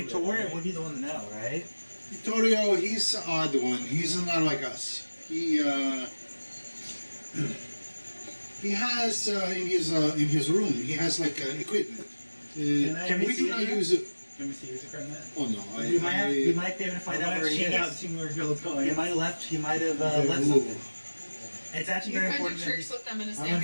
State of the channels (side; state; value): both; inverted; correlation -1.00